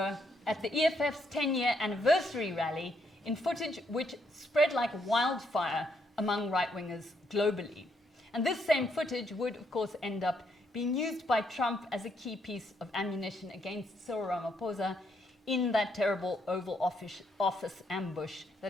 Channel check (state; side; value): normal; both; correlation 0.75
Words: at the EFF's 10-year anniversary rally in footage which spread like wildfire among right-wingers globally. And this same footage would, of course, end up being used by Trump as a key piece of ammunition against Cyril Ramaphosa in that terrible Oval Office ambush